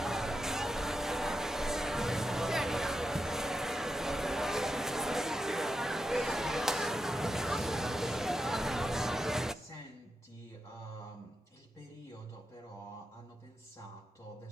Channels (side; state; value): both; normal; correlation 0.88